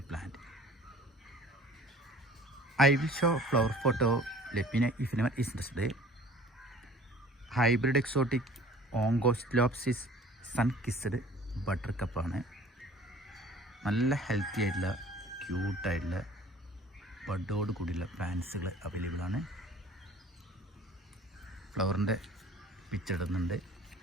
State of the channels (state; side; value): normal; both; correlation 0.49